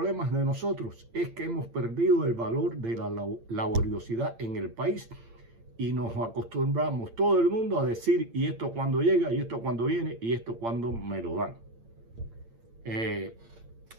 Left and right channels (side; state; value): left; late; 8.8 ms